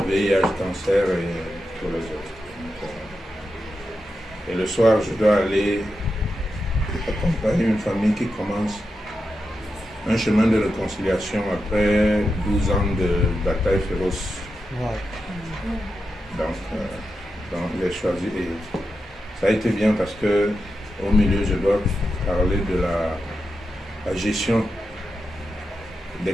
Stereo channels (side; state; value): both; normal; correlation 0.88